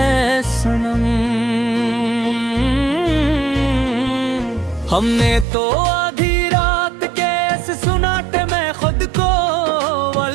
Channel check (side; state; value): left; drops out; at 5.5 s